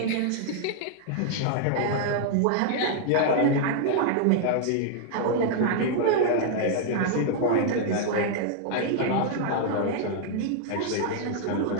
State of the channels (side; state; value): both; different; correlation 0.00